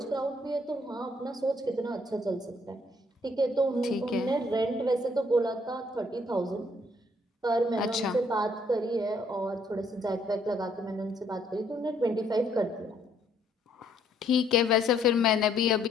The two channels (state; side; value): normal; both; correlation 0.67